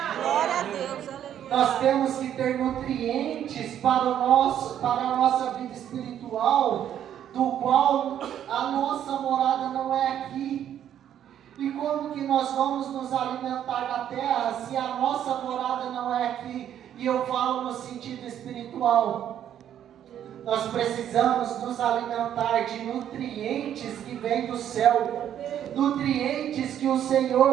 Glória a Deus, aleluia. Nós temos que ter nutrientes para a nossa vida espiritual, do qual a nossa morada não é aqui. E como que nós vamos nos alimentar da terra se a nossa morada não é aqui? E eu falo no sentido espiritual. Nós precisamos nos alimentar de nutrientes que vêm do céu, nutrientes que o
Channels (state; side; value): quieter; left; 10.3 dB